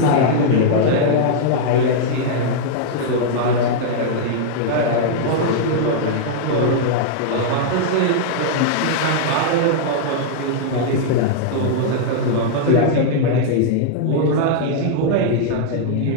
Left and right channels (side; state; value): both; different; correlation -0.01